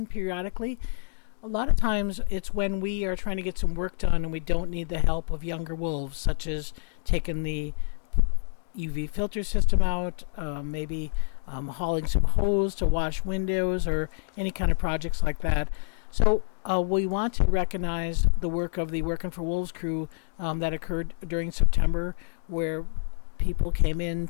periodically. A lot of times it's when we are trying to get some work done and we don't need the help of younger wolves, such as taking the UV filter system out, maybe hauling some hose to wash windows or any kind of projects like that. So we want to recognize the work of the Working for Wolves crew that occurred during September, where people came in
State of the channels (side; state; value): right; silent; digital silence